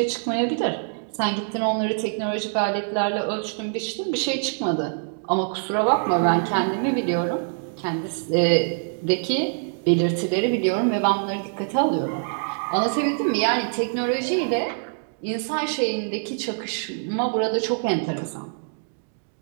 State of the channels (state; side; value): silent; left; digital silence